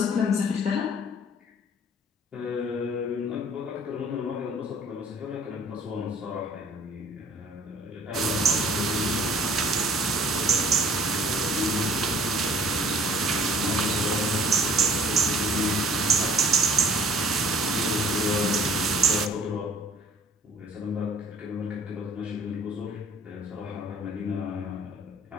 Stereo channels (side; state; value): both; normal; correlation 0.53